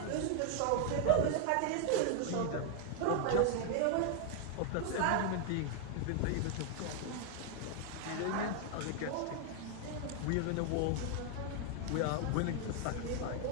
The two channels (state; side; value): different; both; correlation 0.00